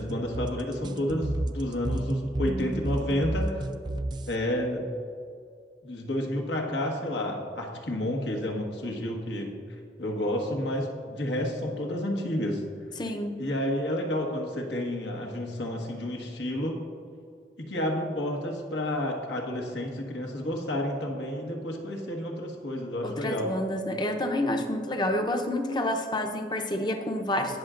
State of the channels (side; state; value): both; normal; correlation 0.56